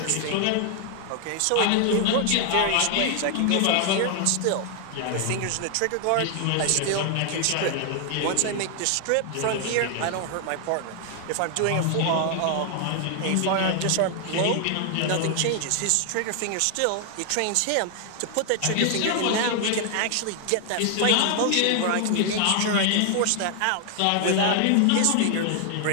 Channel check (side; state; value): both; different; correlation 0.00